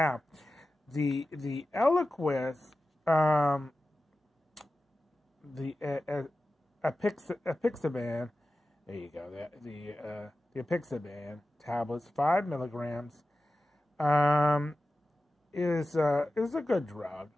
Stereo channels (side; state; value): both; normal; correlation 0.94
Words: the Eliquis, the apixaban. There you go. The apixaban tablets, 5 milligrams, is a good drug.